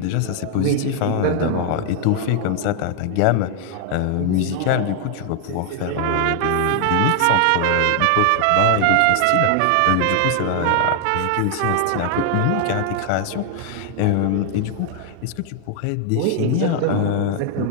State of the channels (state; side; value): different; both; correlation 0.00